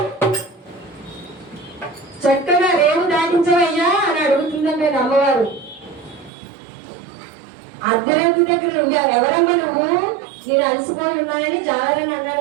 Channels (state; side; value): drops out; left; at 6.3 s